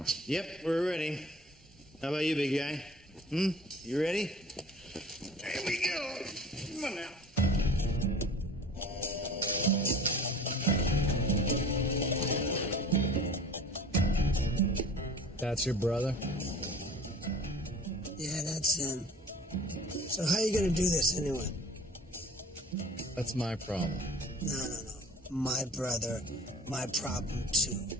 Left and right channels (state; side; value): normal; both; correlation 0.44